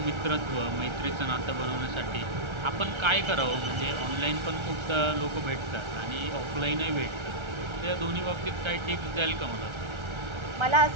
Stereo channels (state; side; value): late; left; 1.3 ms